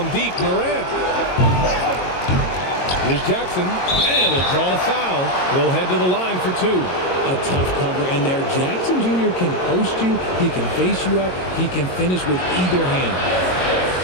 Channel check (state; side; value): late; right; 22 ms